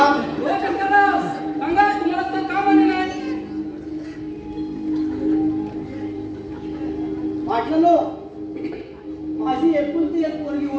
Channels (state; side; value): identical; both; correlation 1.00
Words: हो शंकरराव, सांगा तुम्हाला तर का मान्य नाही? वाटलं माझी एकुलती एक पोरगी